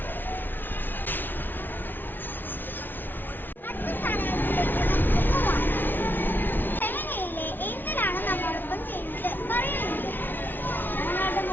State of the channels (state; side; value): late; right; 0.093 ms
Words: അടുത്ത സ്ഥാനാർത്ഥിയിലേക്ക് നമുക്ക് പോവാം. 7A-യിലെ ഏഞ്ചലാണ് നമ്മോടൊപ്പം ചെയ്യുന്നത്. പറയുന്നത്. ഞങ്ങളുടെ